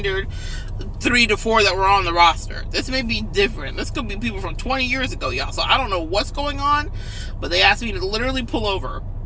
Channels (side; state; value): both; identical; correlation 1.00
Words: 3 to 4 that were on the roster. This may be different. This could be people from 20 years ago, y'all. So I don't know what's going on, but they asked me to literally pull over.